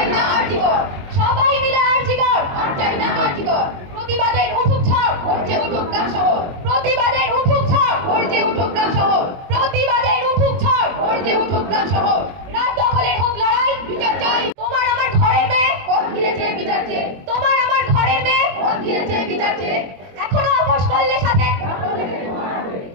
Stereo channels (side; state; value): left; late; 22 ms